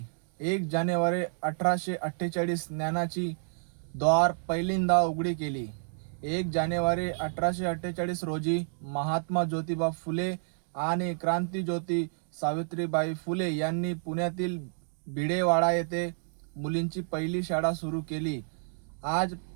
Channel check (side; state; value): left; silent; digital silence